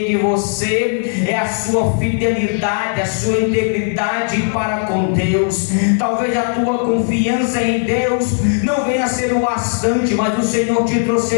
de você é a sua fidelidade, a sua integridade para com Deus. Talvez a tua confiança em Deus não venha a ser o bastante, mas o Senhor te trouxe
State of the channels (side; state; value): right; silent; 68 dB below the other